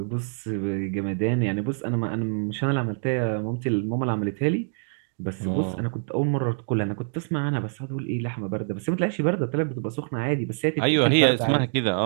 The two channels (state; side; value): silent; left; 61 dB below the other